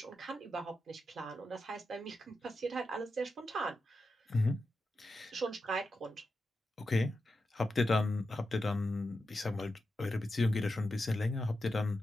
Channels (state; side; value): normal; both; correlation 0.89